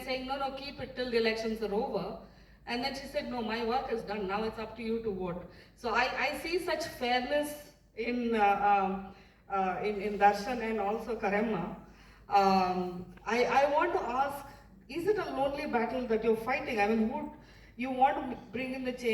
saying, no, keep it till the elections are over. And then she said, no, my work is done, now it's up to you to vote. So I see such fairness in Darshan and also Karema. I want to ask, is it a lonely battle that you're fighting? I mean, you want to bring in the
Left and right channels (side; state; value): both; identical; correlation 1.00